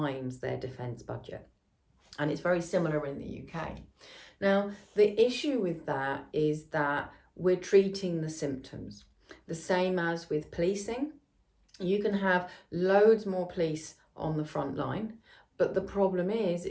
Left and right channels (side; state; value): both; identical; correlation 1.00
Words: their defense budget. And it's very similar in the UK. Now, the issue with that is that we're treating the symptoms. The same as with policing. You can have loads more police on the front line, but the problem is